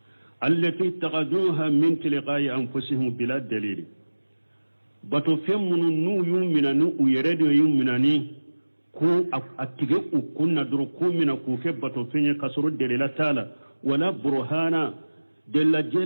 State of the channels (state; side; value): inverted; both; correlation -1.00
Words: allati taqaduha min tilqa'i anfusihim bila dalil bato few munu nuyu mina nu uyeredo yuminani ko atige ukunna duro ko mina ko fe bato fenye kasoro delila tala wala burhana della